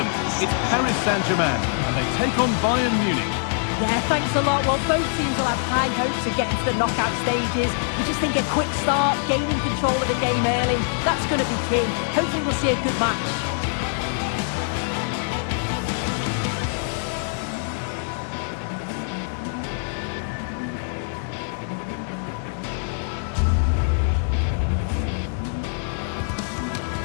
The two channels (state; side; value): silent; right; digital silence